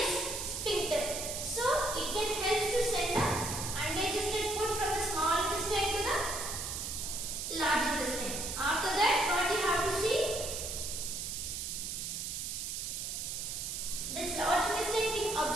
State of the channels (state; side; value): noise; right; hiss, 4 dB below the sound